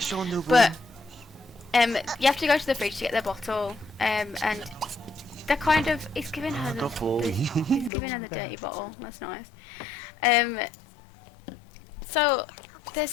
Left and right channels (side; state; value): right; drops out; at 7.9 s